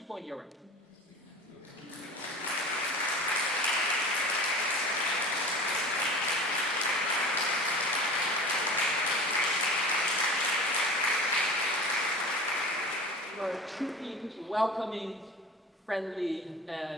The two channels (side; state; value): both; normal; correlation 0.37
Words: in Europe. You are truly welcoming, friendly,